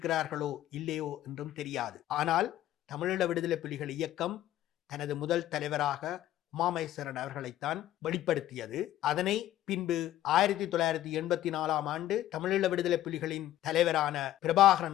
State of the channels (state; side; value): quieter; right; 13.3 dB